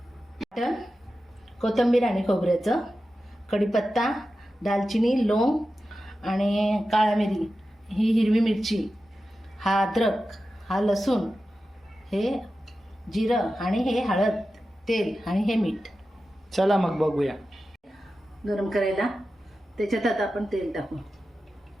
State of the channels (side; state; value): both; normal; correlation 0.93